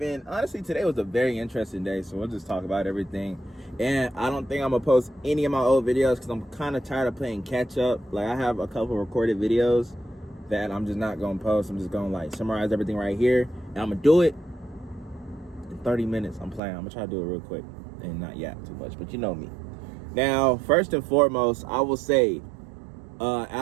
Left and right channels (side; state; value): left; drops out; at 16.6 s